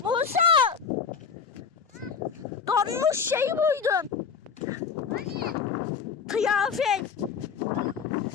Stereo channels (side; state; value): right; quieter; 6.2 dB